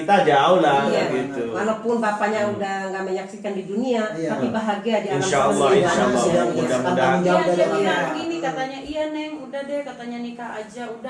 jauh lah Iya. gitu. Walaupun bapaknya udah nggak menyaksikan di dunia, Iya. tapi bahagia di alam Insya Allah, semesta. insya Allah. Sudah Mudah-mudahan. tanggung jawab Iya dari dia orang bilang tua. gini katanya, iya neng udah deh katanya nikah aja,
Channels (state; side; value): identical; both; correlation 1.00